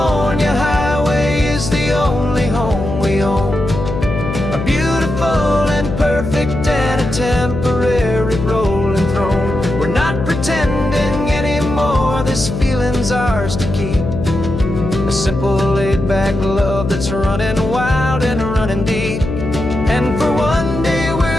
highway is the only home we own, a beautiful and perfect and a temporary rolling throne. We're not pretending anymore, this feeling's ours to keep, a simple laid-back love that's running wild and running deep. And for one day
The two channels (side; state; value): left; noise; hum, 5 dB below the sound